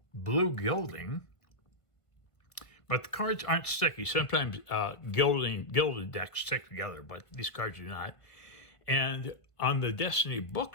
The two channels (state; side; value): late; right; 1.5 ms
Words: blue gilding, but the cards aren't sticky. Sometimes gilded decks stick together, but these cards do not. And on the Destiny